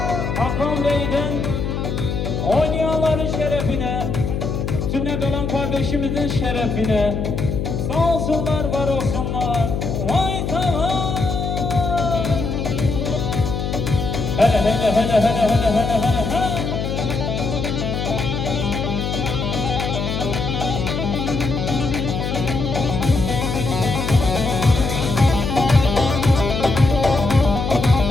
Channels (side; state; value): left; noise; hum, 2 dB below the sound